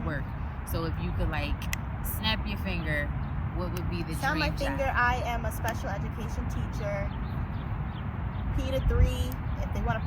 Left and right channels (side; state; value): both; identical; correlation 1.00